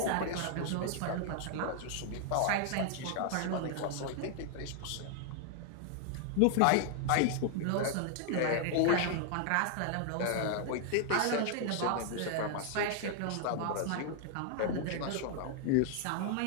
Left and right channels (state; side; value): different; both; correlation 0.00